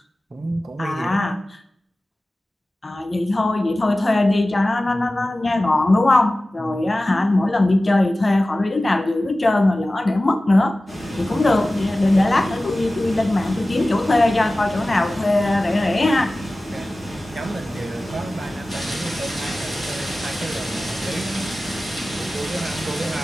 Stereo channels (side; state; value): both; normal; correlation 0.96